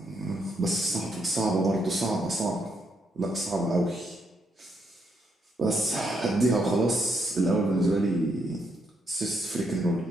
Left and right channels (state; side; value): normal; both; correlation 0.77